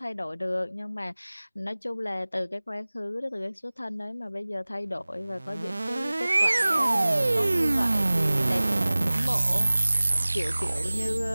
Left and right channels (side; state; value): both; inverted; correlation -0.99